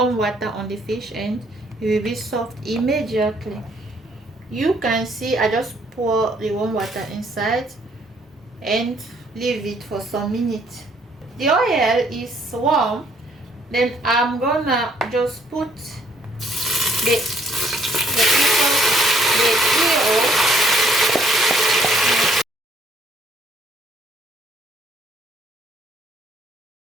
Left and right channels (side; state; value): both; normal; correlation 0.64